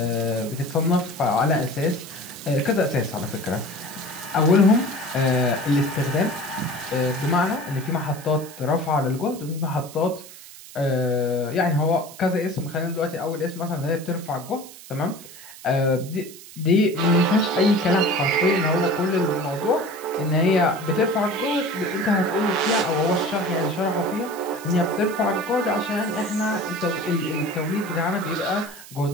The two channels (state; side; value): noise; right; hiss, 17 dB below the sound